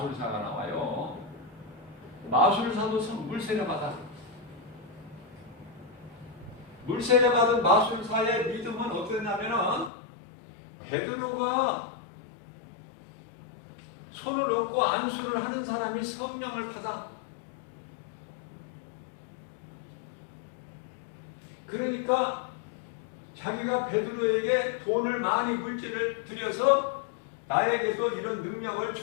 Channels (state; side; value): drops out; right; at 9.9 s